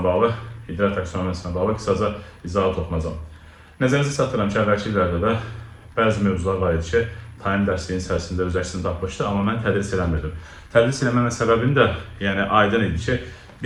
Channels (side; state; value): both; identical; correlation 1.00